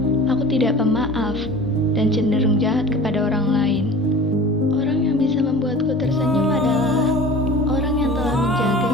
aku tidak pemaaf dan cenderung jahat kepada orang lain. Orang yang bisa membuatku tersenyum adalah orang yang telah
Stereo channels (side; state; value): both; normal; correlation 0.40